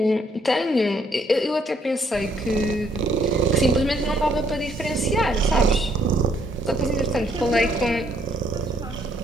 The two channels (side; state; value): both; normal; correlation 0.68